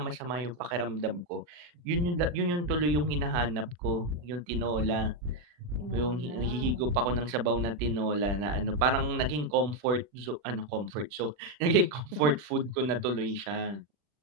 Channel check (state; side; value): late; left; 40 ms